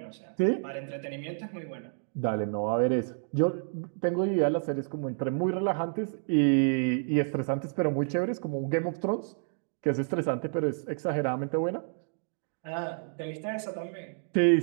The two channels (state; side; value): silent; left; digital silence